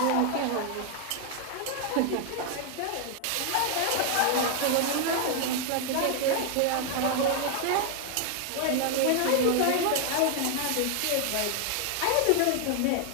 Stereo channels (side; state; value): both; different; correlation 0.00